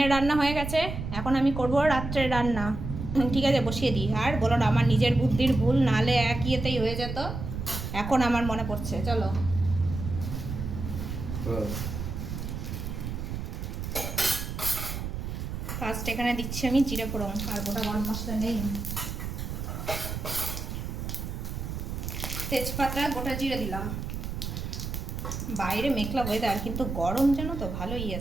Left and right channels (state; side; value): noise; right; rumble, 5 dB below the sound